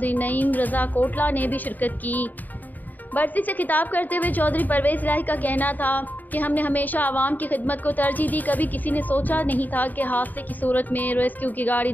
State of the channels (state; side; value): late; right; 0.085 ms